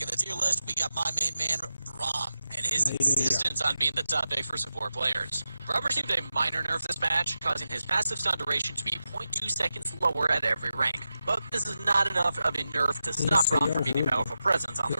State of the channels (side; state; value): both; inverted; correlation -0.91